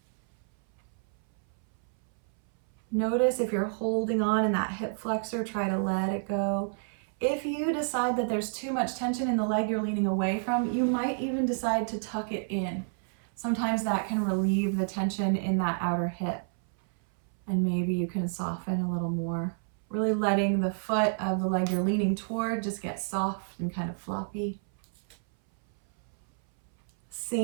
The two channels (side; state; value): left; silent; 58 dB below the other